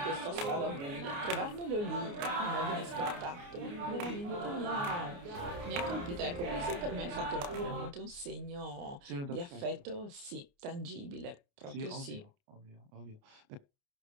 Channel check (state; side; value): late; left; 29 ms